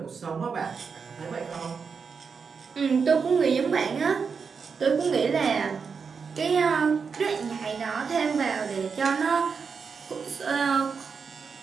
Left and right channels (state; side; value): quieter; left; 5.6 dB